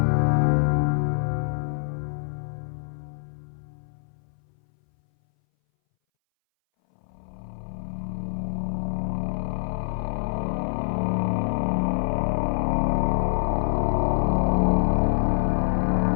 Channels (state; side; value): silent; right; 61 dB below the other